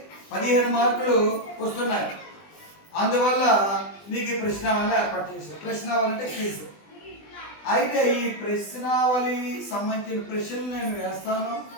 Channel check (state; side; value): late; right; 20 ms